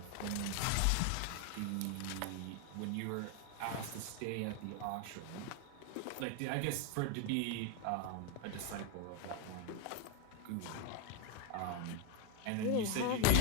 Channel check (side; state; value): both; different; correlation 0.01